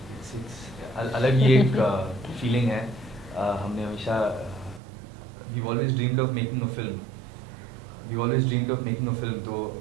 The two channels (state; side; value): drops out; left; at 4.8 s